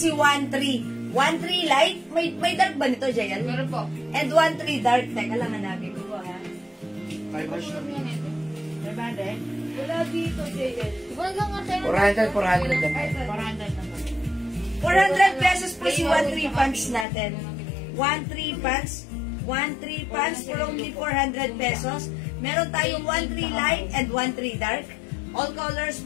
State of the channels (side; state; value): right; drops out; at 17.1 s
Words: 13. 13 light. May dark ba nito, Jayan? Meron po. And 13 dark. Teka lang, hanapin ko po, ha? Five wash na rin. Wala dito, Jayan. Wala lang nga tayo. 400 lang. 400 pesos po si 13 pants natin. 13 pants. 13 pants for only 400 pesos. Meron tayong 13 light and 13 dark. All colors